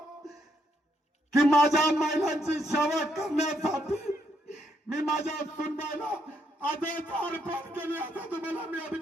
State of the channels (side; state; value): both; normal; correlation 0.76